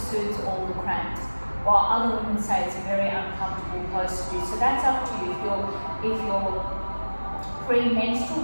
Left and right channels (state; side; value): inverted; both; correlation -1.00